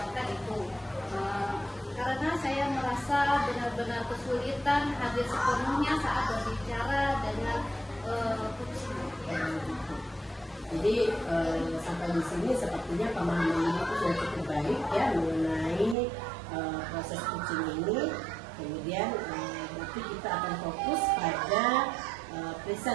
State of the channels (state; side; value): drops out; left; at 16.0 s